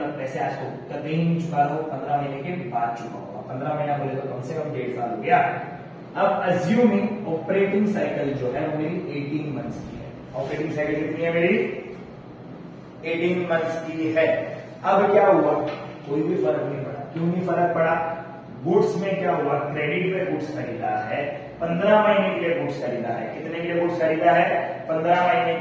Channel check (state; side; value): identical; both; correlation 1.00